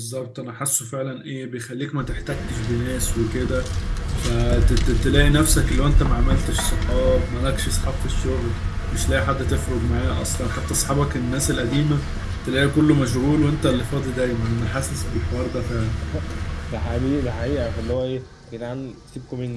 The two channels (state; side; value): identical; both; correlation 1.00